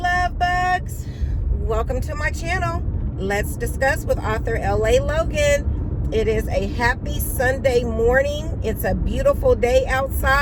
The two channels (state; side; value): identical; both; correlation 1.00